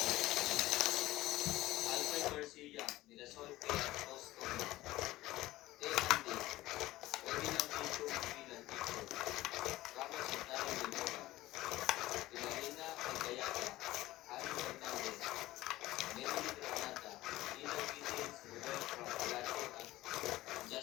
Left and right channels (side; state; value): right; quieter; 17.0 dB